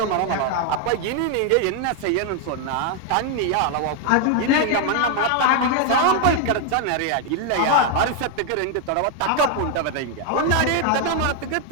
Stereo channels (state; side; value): different; both; correlation 0.00